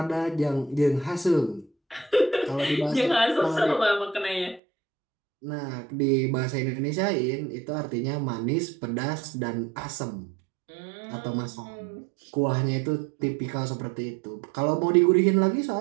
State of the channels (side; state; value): left; drops out; at 4.6 s